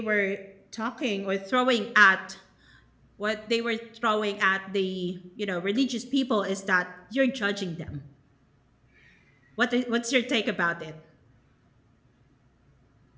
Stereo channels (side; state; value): both; identical; correlation 1.00